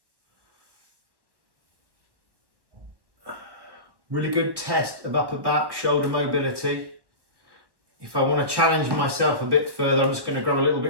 Really good test of upper back, shoulder mobility. If I want to challenge myself a bit further, I'm just going to grab a little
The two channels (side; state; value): left; late; 1.1 ms